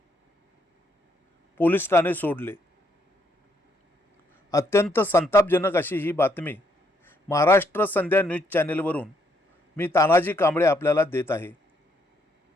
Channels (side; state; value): both; normal; correlation 0.72